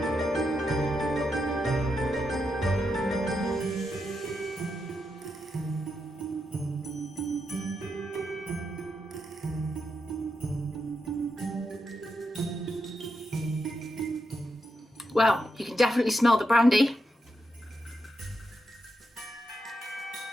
Well, you can definitely smell the brandy.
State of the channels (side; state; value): both; normal; correlation 0.85